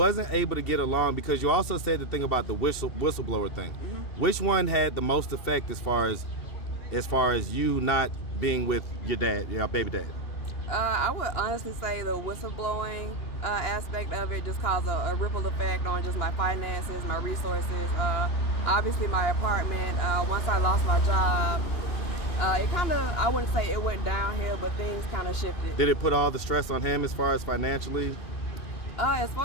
able to get along, because you also said the thing about the whistleblower thing, which one had the most effect as far as you not being with your dad, your baby dad? I would honestly say the whistleblowing aspect of it just caused a ripple effect on just my finances, my resources. Obviously, my apartment, once I lost my job, it kind of, I wouldn't say it went downhill, but things kind of shifted. Did it put all the stress on him as far as financially? As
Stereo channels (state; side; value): late; right; 2.8 ms